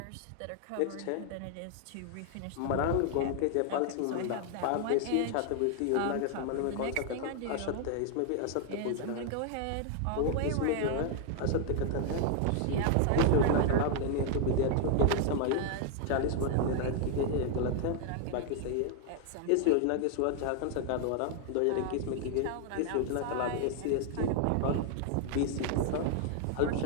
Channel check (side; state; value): both; different; correlation 0.00